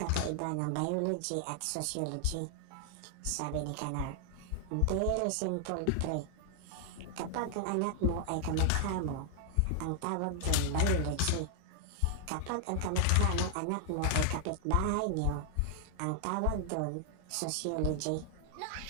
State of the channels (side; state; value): both; different; correlation 0.00